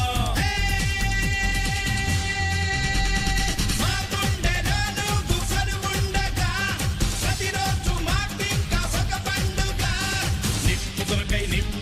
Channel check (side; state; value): both; identical; correlation 1.00